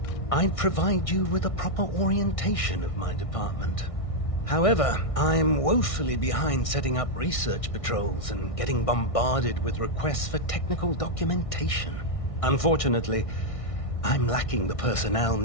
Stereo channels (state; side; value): late; right; 1.6 ms